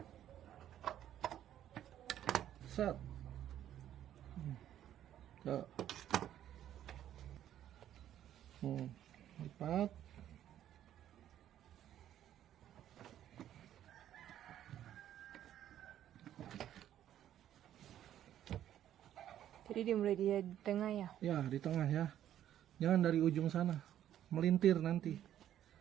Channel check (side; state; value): left; quieter; 11.3 dB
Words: Set. Tuh. Lipat. Jadi dimulai di tengah ya. Ya, di tengah ya. Jangan dari ujung sana. Melintir nanti.